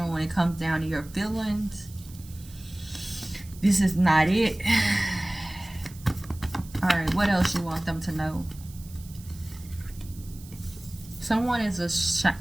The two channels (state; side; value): noise; right; hiss, 21 dB below the sound